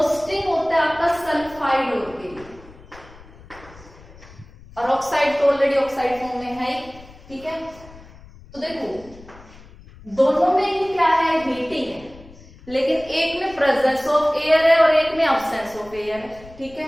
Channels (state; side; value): noise; left; rumble, 21 dB below the sound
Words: होता है आपका सल्फाइड और के लिए, और ऑक्साइड तो ऑलरेडी ऑक्साइड फॉर्म में है, ठीक है। तो देखो दोनों में ही क्या है, हीटिंग है, लेकिन एक में प्रेजेंस ऑफ एयर है और एक में अब्सेंस ऑफ एयर है, ठीक है।